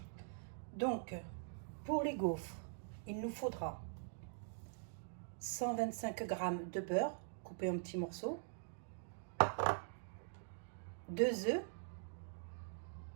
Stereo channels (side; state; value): left; silent; digital silence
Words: Donc pour les gaufres, il nous faudra 125 g de beurre coupé en petits morceaux, 2 œufs,